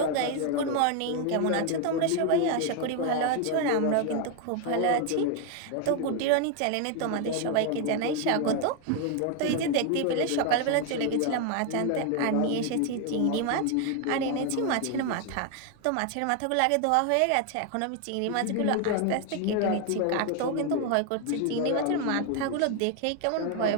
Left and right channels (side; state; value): both; different; correlation 0.01